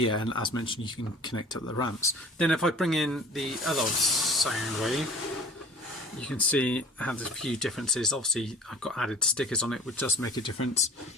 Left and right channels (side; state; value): both; normal; correlation 0.46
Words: and as mentioned, you can connect up the ramps. Then if I bring in the other Soundwave, you can see I have a few differences. Obviously I've got added stickers on it, which does make a difference.